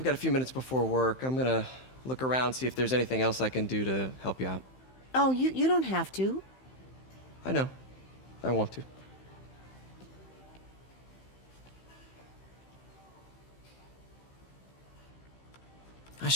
got a few minutes before work. I'm gonna look around, see if there's anything else I can do to help you out. Oh, you don't have to. I know. I want to. I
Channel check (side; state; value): right; late; 15 ms